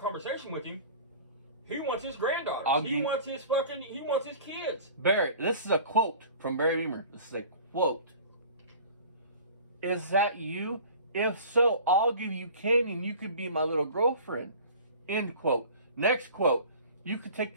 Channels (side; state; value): both; inverted; correlation -0.43